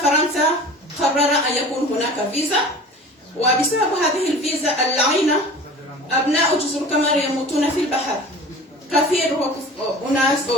فرنسا قرر أن يكون هناك فيزا، وبسبب هذه الفيزا اللعينة أبناء جزر القمر يموتون في البحر. كثير أناس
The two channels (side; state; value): both; normal; correlation 0.40